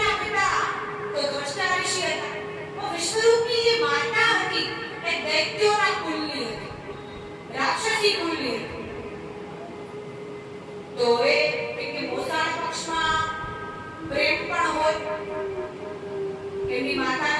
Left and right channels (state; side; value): identical; both; correlation 1.00